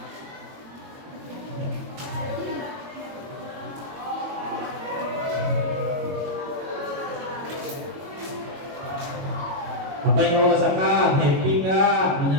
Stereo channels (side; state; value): left; late; 22 ms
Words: Apa yang kamu rasakan? Happy nggak?